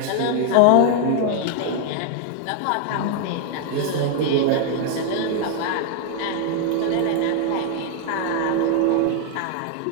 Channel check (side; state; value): both; different; correlation 0.00